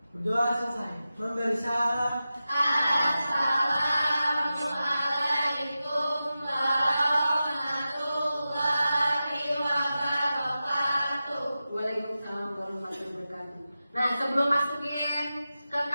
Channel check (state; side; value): inverted; both; correlation -0.93